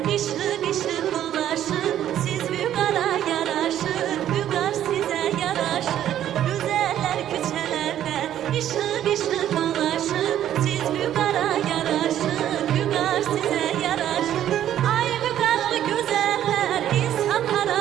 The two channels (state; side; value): quieter; left; 11.3 dB